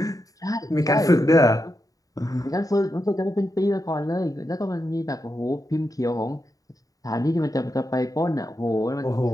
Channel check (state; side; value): late; right; 0.17 ms